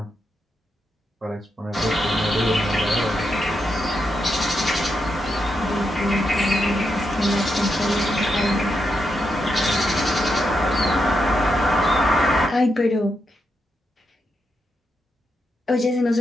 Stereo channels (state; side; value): normal; both; correlation 0.83